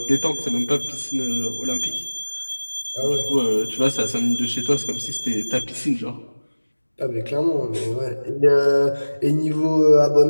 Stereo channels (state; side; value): inverted; both; correlation -1.00